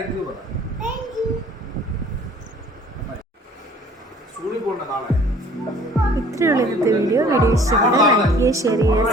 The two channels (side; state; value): both; normal; correlation 0.53